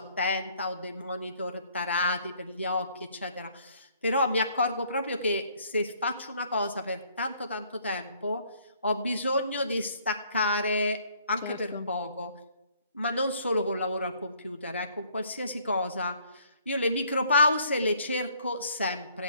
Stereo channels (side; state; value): both; inverted; correlation -0.62